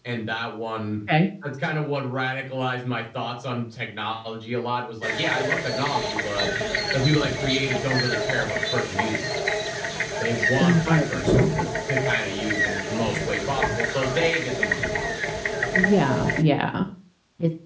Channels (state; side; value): identical; both; correlation 1.00